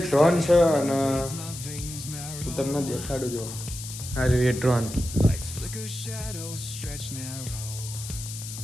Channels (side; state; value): left; noise; hiss, 10 dB below the sound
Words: ડ્રોન છે અને હું તમને દેખાડું જો આ રહ્યું એ ડ્રોન.